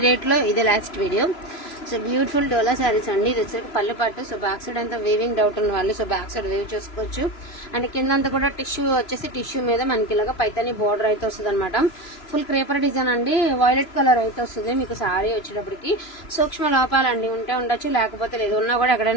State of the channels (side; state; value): right; late; 3.0 ms